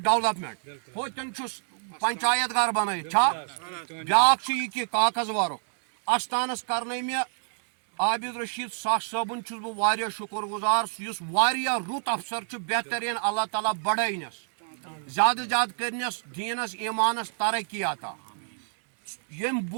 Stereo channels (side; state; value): left; silent; digital silence